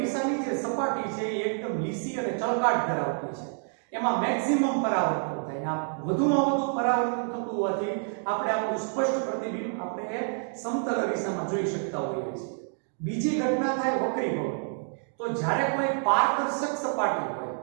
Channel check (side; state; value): left; silent; 59 dB below the other